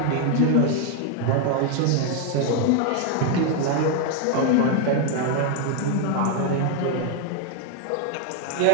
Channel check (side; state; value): both; different; correlation 0.00